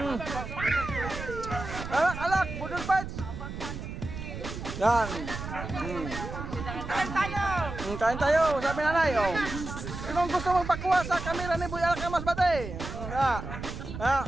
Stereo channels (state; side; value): noise; right; rumble, 8 dB below the sound